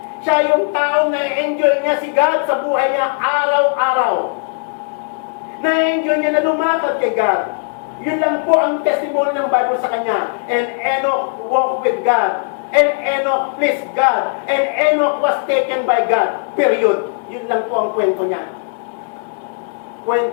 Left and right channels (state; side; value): silent; right; 68 dB below the other